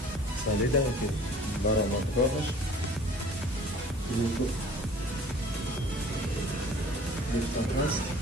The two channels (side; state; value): both; normal; correlation 0.48